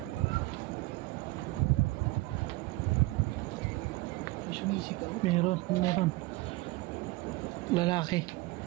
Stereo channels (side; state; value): left; quieter; 21.1 dB